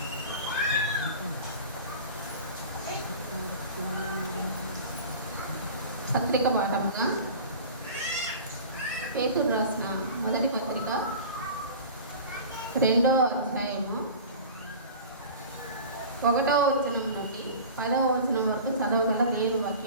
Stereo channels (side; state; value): both; inverted; correlation -0.37